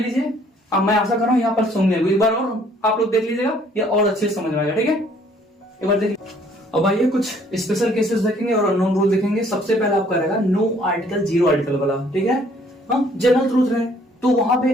अब मैं आशा कर रहा हूँ यहाँ पर सुन लेंगे, एक बार और आप लोग देख लीजिएगा, ये और अच्छे से समझ में आएगा, ठीक है। एक बार देखिए। अब आइए कुछ स्पेशल केसेस देखेंगे और अननोन रूल देखेंगे। सबसे पहले आपका रहेगा नो आर्टिकल, जीरो आर्टिकल वाला, ठीक है। जनरल ट्रूथ है तो वहां पे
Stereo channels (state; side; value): normal; both; correlation 0.61